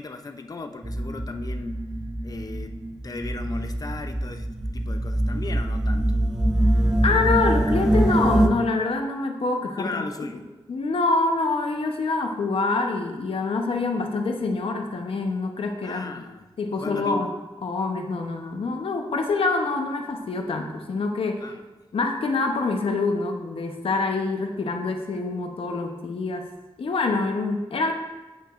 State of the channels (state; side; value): normal; both; correlation 0.68